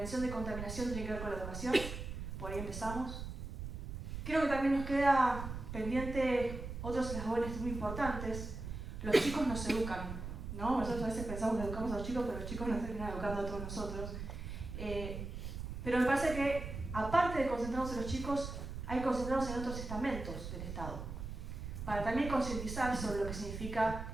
contaminación tiene que ver con la educación. Por ahí empezamos. Creo que también nos queda pendiente otros eslabones muy importantes. Los chicos nos educan, ¿no? Nosotros a veces pensamos que educamos a los chicos, pero los chicos nos terminan educando a todos nosotros. Pero me parece que, aparte de concentrarnos en los chicos, hay que concentrarnos en otros estamentos del Estado, para también concientizar sobre lo que significa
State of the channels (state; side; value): noise; right; rumble, 7 dB below the sound